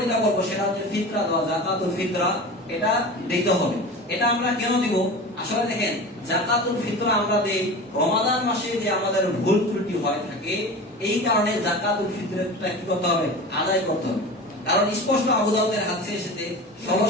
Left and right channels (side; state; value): both; normal; correlation 0.32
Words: যেটা বলবো সেটা হচ্ছে ফিতরা দেওয়া, যাকাতুল ফিতরা, এটা দিতে হবে। এটা আমরা কেন দিব? আসলে দেখেন, যাকাতুল ফিতরা আমরা দেই রমাদান মাসে যে আমাদের ভুল ত্রুটি হয় থাকে, এই কারণে যাকাতুল ফিতরাটা কি করতে হবে? আদায় করতে হবে। কারণ স্পষ্ট আবু দাউদের হাদিসে এসেছে,